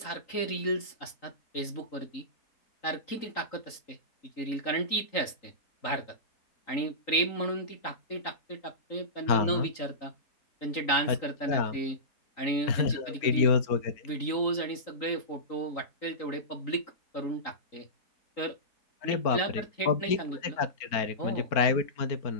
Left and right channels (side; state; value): right; late; 3.9 ms